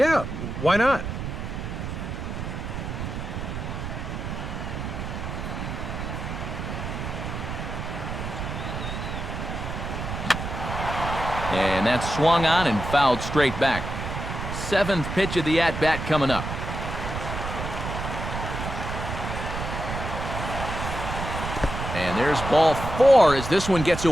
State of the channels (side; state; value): right; noise; rumble, 5 dB below the sound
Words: why not? And that's swung on and fouled straight back. 7th pitch of the at-bat coming up. And there's ball 4 as this one gets